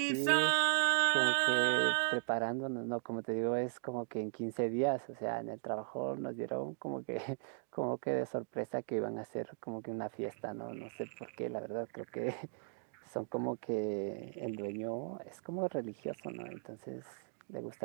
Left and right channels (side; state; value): left; silent; digital silence